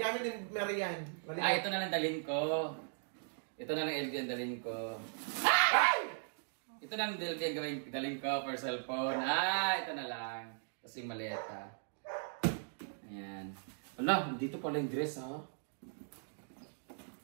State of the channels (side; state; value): left; silent; digital silence